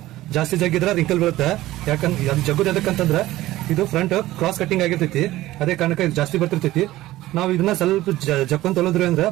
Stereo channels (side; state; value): left; quieter; 16.3 dB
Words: ಜಾಸ್ತಿ ಜಗ್ಗಿದ್ರ ರಿಂಕಲ್ ಬರುತ್ತೆ. ಯಾಕಂದ್ರೆ ಅದು ಜಗ್ಗುದು ಎದಕ್ಕಂತಂದ್ರ ಇದು ಫ್ರಂಟ್ ಕ್ರಾಸ್ ಕಟ್ಟಿಂಗ್ ಆಗಿರ್ತೈತಿ, ಅದೇ ಕಾರಣಕ್ಕೆ ಇದು ಜಾಸ್ತಿ ಬರ್ತಿರ್ತೈತಿ. ನಾವು ಇದನ್ನ ಸ್ವಲ್ಪ ಜಕ್ಕೊಂಡ್ ತೊಳೋದ್ರಿ ಅಂದ್ರೆ